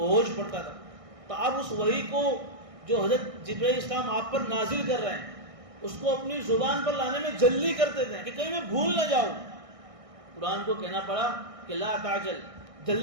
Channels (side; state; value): left; late; 1.6 ms